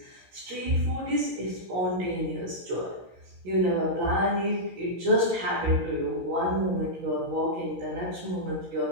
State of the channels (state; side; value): late; left; 16 ms